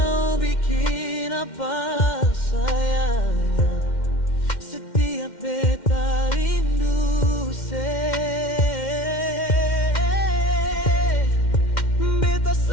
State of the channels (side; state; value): right; late; 2.1 ms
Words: bikin apa sayang. Setiap beta rindu beta